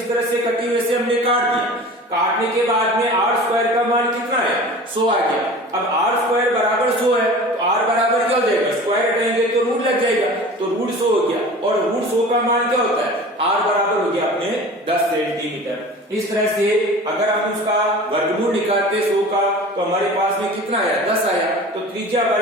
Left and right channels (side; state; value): both; normal; correlation 0.39